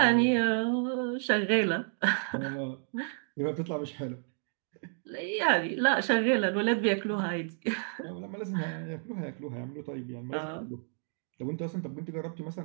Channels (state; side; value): silent; left; 57 dB below the other